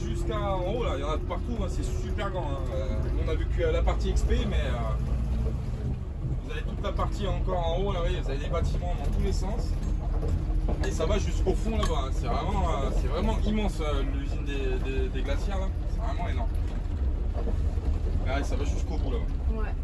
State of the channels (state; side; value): identical; both; correlation 1.00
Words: en haut, là, il y en a de partout, hein, c'est super grand. Hein. On a vu que la partie XP, mais vous avez toute la partie encore en haut, là, vous voyez, vous avez des bâtiments dans tous les sens. Et ça va jusqu'au fond là-bas, hein. C'est vraiment immense l'usine des glacières là, c'est vraiment énorme. Là, ça va jusqu'au bout là-bas. Ouais.